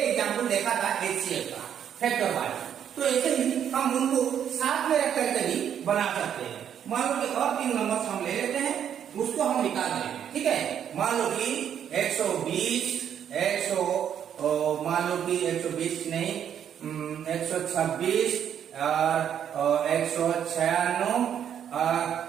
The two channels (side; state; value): left; quieter; 9.1 dB